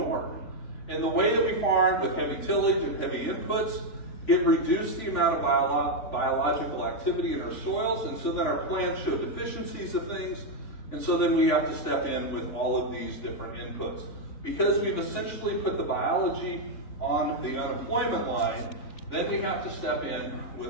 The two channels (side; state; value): right; late; 3.5 ms